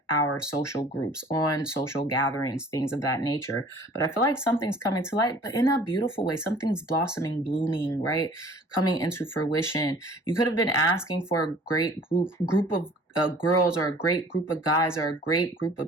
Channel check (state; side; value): normal; both; correlation 0.50